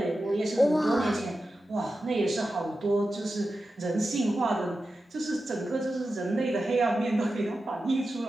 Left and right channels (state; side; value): normal; both; correlation 0.92